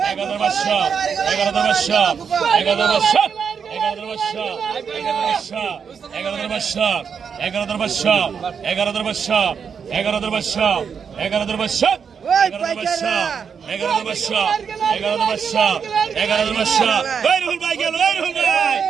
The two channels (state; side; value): quieter; left; 6.7 dB